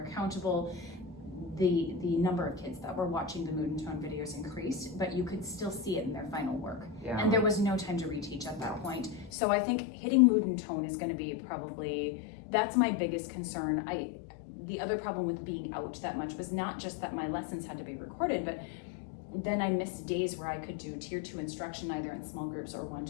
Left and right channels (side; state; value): right; drops out; at 9.3 s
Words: accountable. The number of kids that were watching the mood and tone videos increased, but you could still see it in their final work. And there was no time to reteach at that point. So I think hitting mood and tone is gonna be probably, that's my biggest concern. The other problem with being out that much was not just that my lessons had to be recorded, but then I missed days where I could do tier 2 instruction either in small groups or